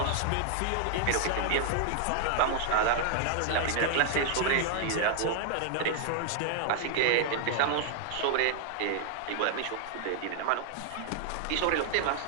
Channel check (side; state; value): both; different; correlation 0.00